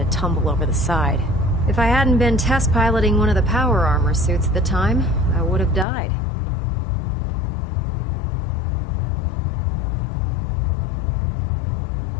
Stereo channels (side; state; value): right; drops out; at 5.9 s